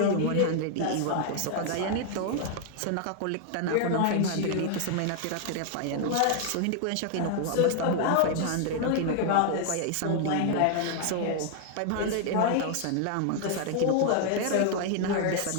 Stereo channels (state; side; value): different; both; correlation 0.00